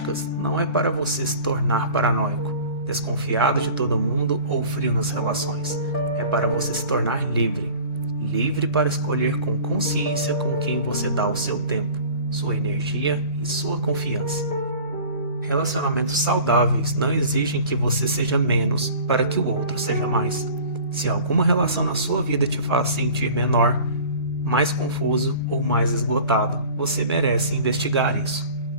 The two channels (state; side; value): inverted; both; correlation -0.42